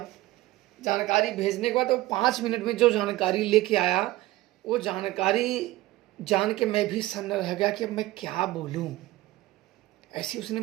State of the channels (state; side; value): quieter; left; 17.4 dB